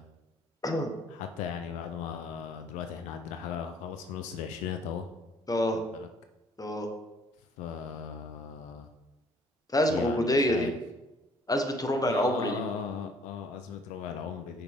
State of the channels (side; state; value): both; normal; correlation 0.59